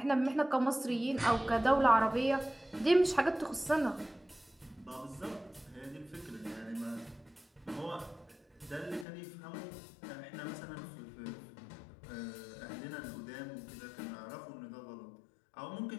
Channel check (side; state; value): right; drops out; at 9.1 s